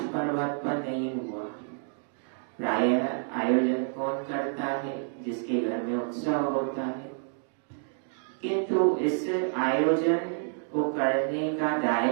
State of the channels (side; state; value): left; silent; digital silence